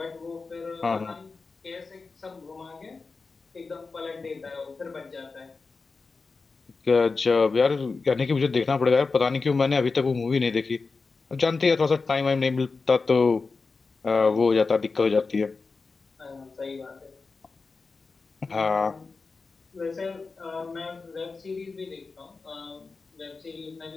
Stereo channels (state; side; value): quieter; right; 4.3 dB